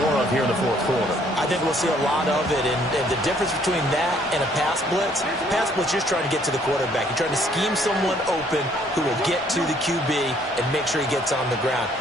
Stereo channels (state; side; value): normal; both; correlation 0.63